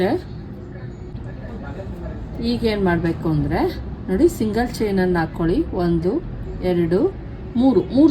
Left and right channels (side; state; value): both; identical; correlation 1.00